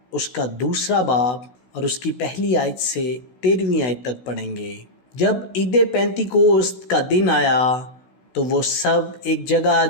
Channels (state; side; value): late; right; 16 ms